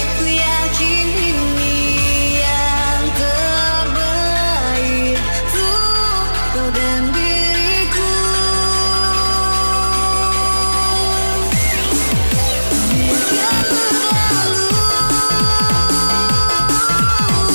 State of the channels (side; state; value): both; inverted; correlation -1.00